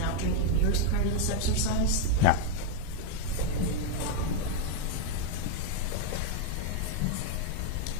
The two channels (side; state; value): both; different; correlation 0.01